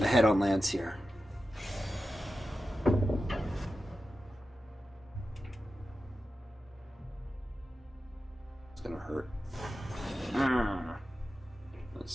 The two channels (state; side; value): normal; both; correlation 0.92